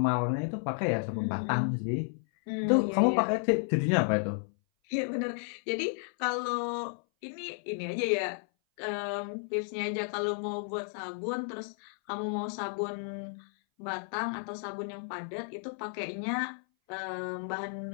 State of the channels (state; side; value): silent; right; 56 dB below the other